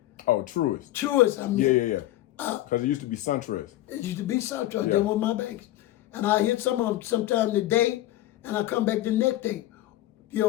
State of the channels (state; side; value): quieter; right; 15.1 dB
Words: Oh, Truist. Truist, I mean. Yeah. Because it used to be SunTrust. It used to be SunTrust. They were my banks. And I hit some of them sometime today, and I come back the next day. You